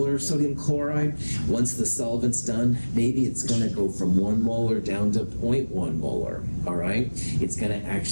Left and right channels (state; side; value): inverted; both; correlation -1.00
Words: sodium chloride, once the solvent's done, maybe it's going to go from 1 molar down to 0.1 molar, all right? It's going to